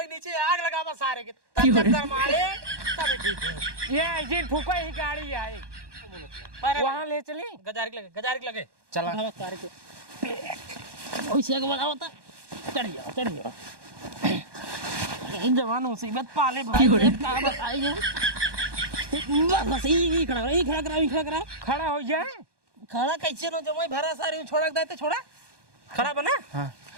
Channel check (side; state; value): left; late; 1.2 ms